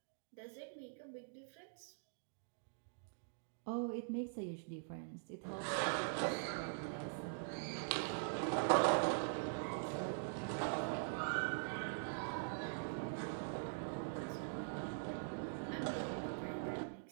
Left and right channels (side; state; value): left; silent; digital silence